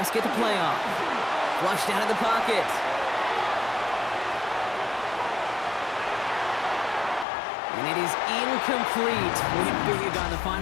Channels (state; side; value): drops out; right; at 7.2 s